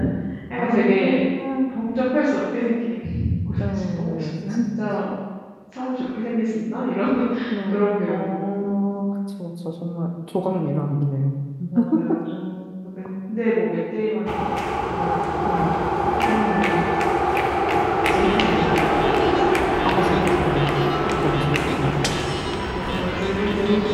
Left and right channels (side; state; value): both; identical; correlation 1.00